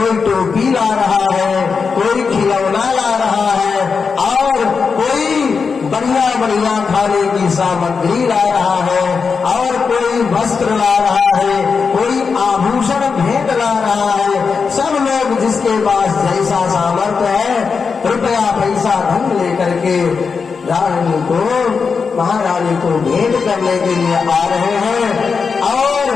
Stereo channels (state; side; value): quieter; right; 5.4 dB